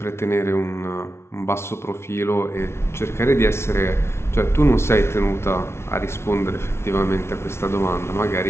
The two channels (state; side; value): late; right; 0.12 ms